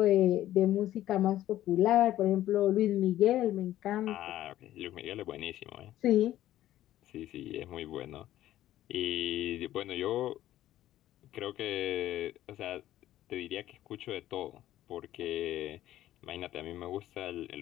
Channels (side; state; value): right; quieter; 13.5 dB